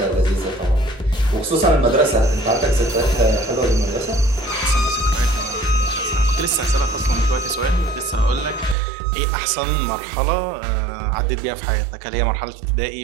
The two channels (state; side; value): drops out; left; at 8.8 s